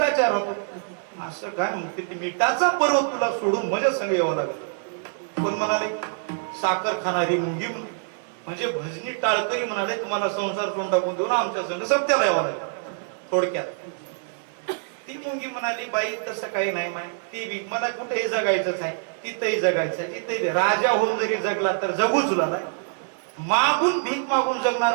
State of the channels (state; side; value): silent; left; 56 dB below the other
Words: राहतो. असं काय म्हणते, ती मिठाचा पर्वत तुला सोडून माझ्या संग यावं लागलं. पण म्हणाले साखर खाणारी मुंगी म्हणजे भजनी टाळकरी म्हणाले, तुम्हाला संसार सोडून टाकून देऊ ना आमच्या संग सत्याला यावं लागलं. थोडक्यात ती मुंगी म्हणाली, बाई तसं काही नाही माय, ती बी मला कुठेही जगायचंच आहे, तिथेही जगायचं आहे, तिथे राजा होऊन जरी जगला तर जगूच लागला. मागून भीक मागून